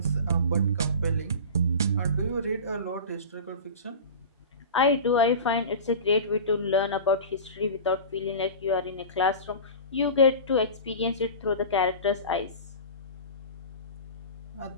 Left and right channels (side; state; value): both; inverted; correlation -0.32